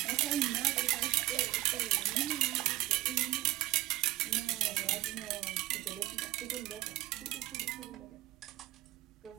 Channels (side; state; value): left; quieter; 16.7 dB